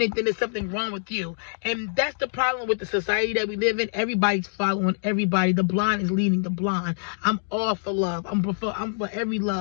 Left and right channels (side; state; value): right; silent; digital silence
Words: it, then there's something wrong with you. And that's the problem with the society that we live in. Everybody's following everybody. The blind is leading the blind. I'm all for love. I'm for every